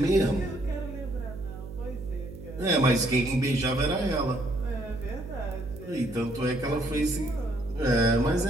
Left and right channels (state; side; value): noise; right; hum, 13 dB below the sound